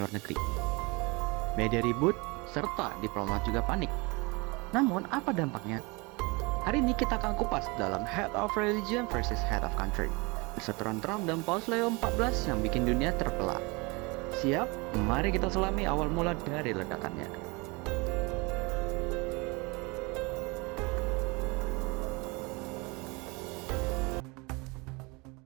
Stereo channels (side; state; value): left; quieter; 27.1 dB